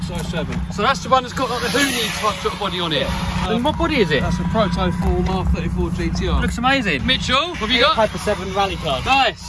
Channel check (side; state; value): both; identical; correlation 1.00